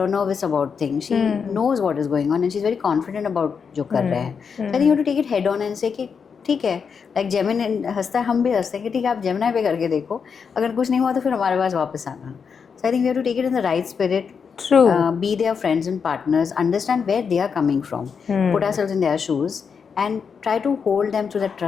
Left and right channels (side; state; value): right; quieter; 6.2 dB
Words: or nervous about things. She knows what is going on and she's very confident about जो कर रहे हैं. So I think you have to take it head on and say कि ठीक है, like जेमिन हंसता है, हम भी हंसते हैं कि ठीक है, आप जेमिनाई पे करके देखो, अगर कुछ नहीं हुआ तो फिर हमारे पास वापस आना. So I think we have to take it in the right spirit. Be their friends and partners, understand where they are coming from, put ourselves in their shoes and try to hold them through that